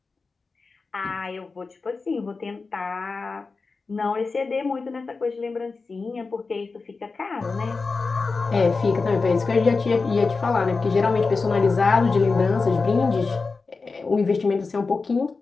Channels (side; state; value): right; quieter; 4.2 dB